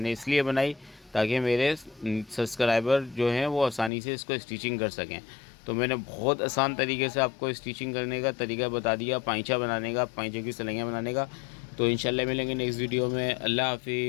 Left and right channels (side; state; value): right; drops out; at 3.9 s